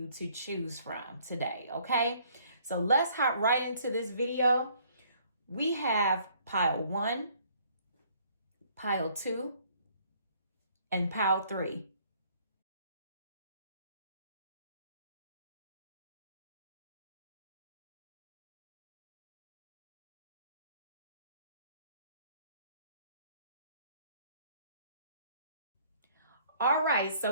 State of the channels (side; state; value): both; inverted; correlation -0.61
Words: to choose from today, okay? So let's hop right into this video. We have pile 1, pile 2, and pile 3. All right,